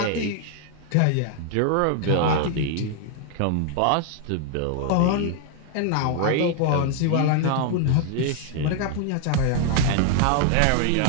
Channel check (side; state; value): both; different; correlation 0.00